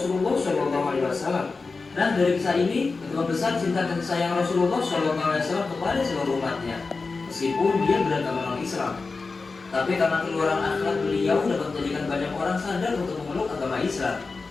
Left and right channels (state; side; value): quieter; right; 4.1 dB